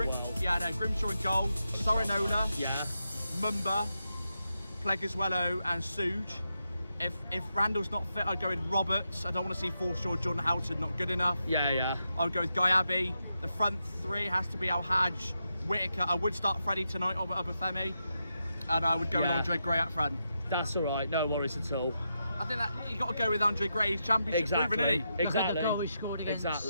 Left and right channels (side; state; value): both; inverted; correlation -0.85